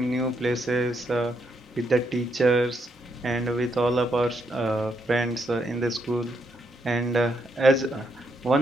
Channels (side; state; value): both; normal; correlation 0.78